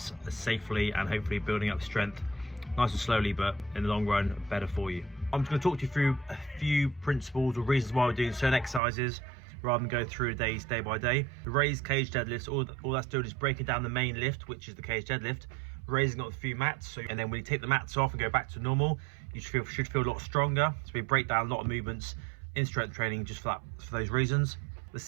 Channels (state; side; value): drops out; left; at 8.8 s